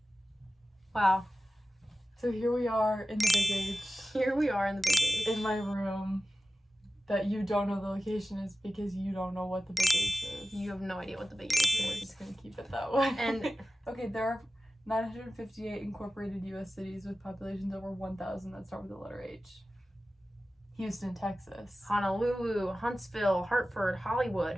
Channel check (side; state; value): both; normal; correlation 0.95